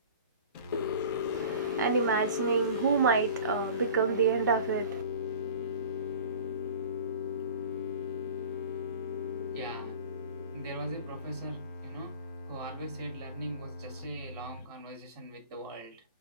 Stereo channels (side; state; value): both; inverted; correlation -0.41